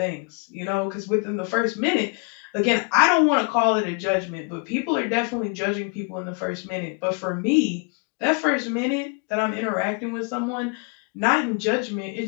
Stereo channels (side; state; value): right; quieter; 34.9 dB